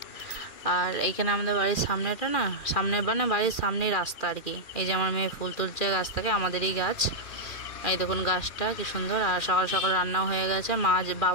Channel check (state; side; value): late; right; 2.4 ms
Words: আর এইখানে আমাদের বাড়ির সামনেটা না, সামনে মানে বাড়ির সামনেই রাস্তা আর কি। এই যে আমার মেয়ে ফুল তুলছে গাছ থেকে, আমাদেরই গাছ। এই দেখুন গাছটা কি সুন্দর। আর সকাল সকাল রান্নাও হয়ে গেছে।